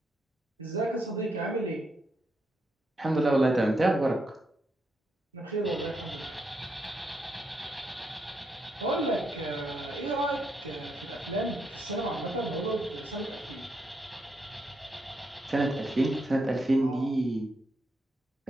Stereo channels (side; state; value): both; normal; correlation 0.80